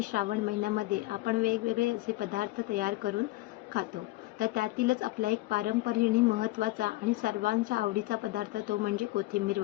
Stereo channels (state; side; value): quieter; right; 19.0 dB